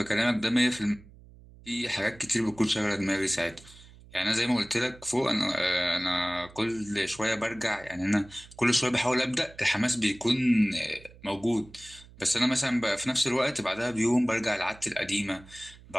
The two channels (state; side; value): noise; right; hum, 22 dB below the sound